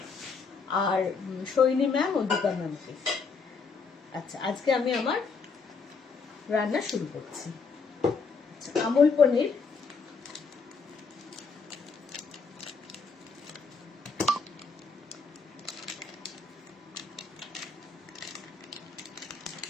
আর সৈনী ম্যাম ও দীপা ম্যামকে। আচ্ছা, আজকে আমি আমার রান্না শুরু করছি। আমুল পনির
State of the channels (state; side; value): quieter; right; 4.9 dB